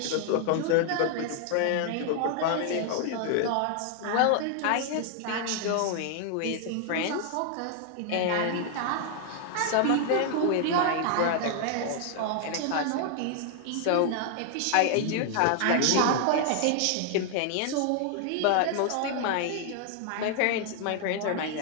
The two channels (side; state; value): both; different; correlation 0.00